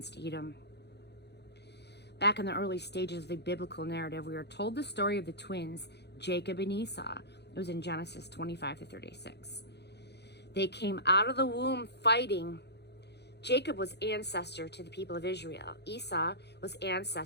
Edom. Back in the early stages of the biblical narrative, we are told the story of the twins, Jacob and Esau. It was in Genesis 25-36. They came out of the womb fighting. Jacob was ancestor to the people of Israel. Esau was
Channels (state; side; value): late; right; 0.49 ms